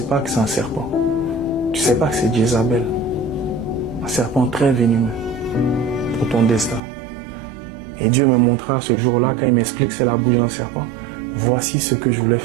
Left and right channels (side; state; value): left; drops out; at 6.8 s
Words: pas que c'est un serpent. Tu ne sais pas que c'est Jézabel. Un serpent très venimeux pour ton destin. Et Dieu me montra ce jour-là, quand il m'explique que c'est la bouche d'un serpent, voici ce que je voulais